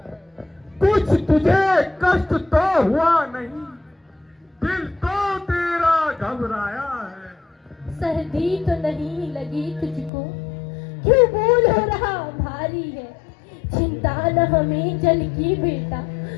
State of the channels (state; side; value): drops out; right; at 10.1 s